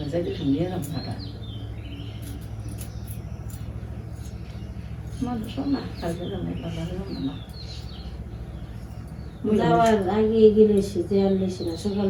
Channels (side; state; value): both; identical; correlation 1.00